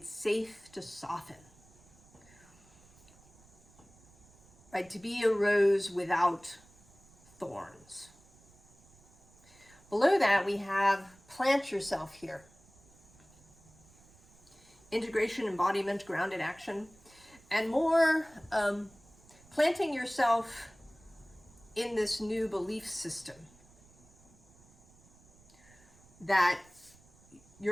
safe to soften. Right, to be a rose without thorns. Below that, we have plant yourself here. Integration, embodiment, grounded action, and more planting yourself in this new belief system that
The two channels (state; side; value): noise; right; rumble, 27 dB below the sound